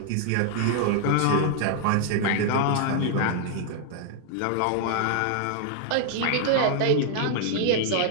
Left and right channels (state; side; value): different; both; correlation -0.01